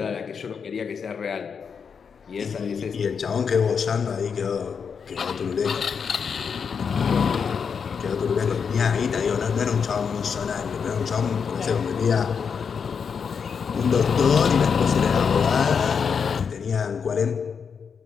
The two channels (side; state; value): right; quieter; 6.3 dB